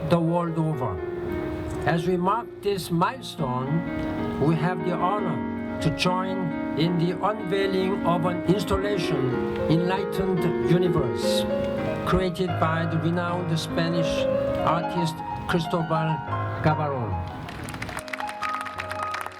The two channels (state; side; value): identical; both; correlation 1.00